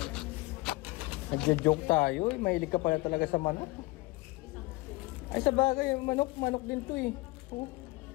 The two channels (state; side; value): quieter; right; 22.3 dB